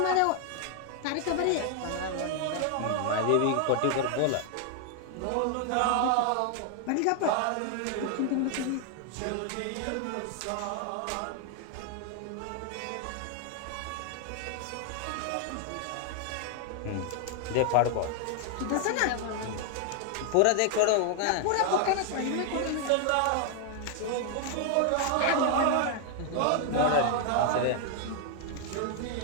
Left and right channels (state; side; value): different; both; correlation 0.00